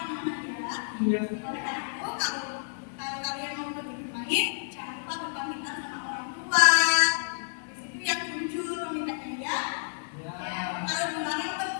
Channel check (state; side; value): silent; right; digital silence